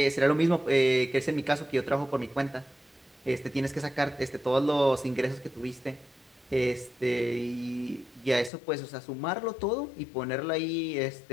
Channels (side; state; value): right; drops out; at 8.5 s